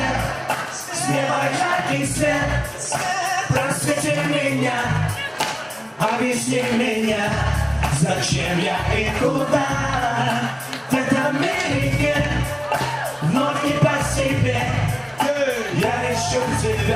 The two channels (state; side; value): identical; both; correlation 1.00